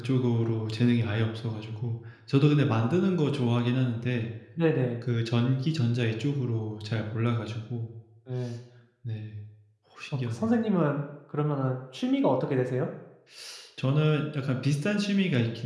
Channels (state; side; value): identical; both; correlation 1.00